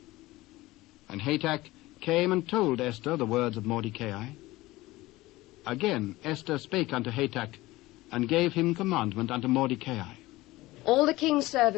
And Hatach came and told Esther the words of Mordecai. Again Esther spake unto Hatach, and gave him commandment unto Mordecai. All the king's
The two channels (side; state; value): right; quieter; 19.0 dB